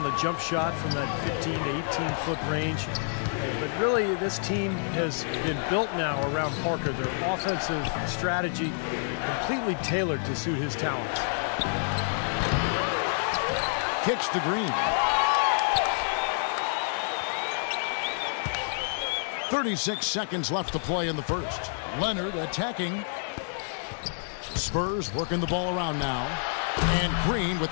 the jump shot from that 15 to 18-foot range. But really, this team has been built now around Parker. Their offensive strategy completely tailored to suit his talents. Kicks to Green. 36 seconds left to play in the first. Leonard attacking. Spurs working the ball around now. And Green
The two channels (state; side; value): silent; right; digital silence